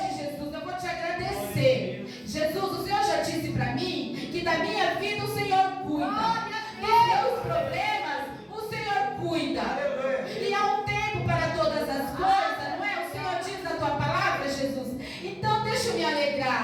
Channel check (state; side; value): identical; both; correlation 1.00